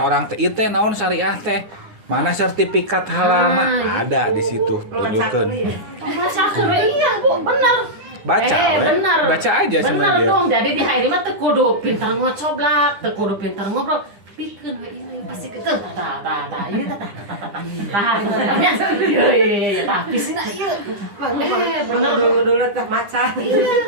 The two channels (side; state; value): left; late; 9.9 ms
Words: teh, itu naon syariah teh, mana sertifikat halal mah ada di situ tunjukkeun. Baca iya Bu, benar. Baca, benar. baca aja sama benar dia. dong. Jadi di HNI mah teu kudu pintar ngocoblak, teu kudu pintar ngobrol. Pikeun we ini pasti ke tah ieu tah. Iya. Tah pisina ieu. Benar Dulu teh maca.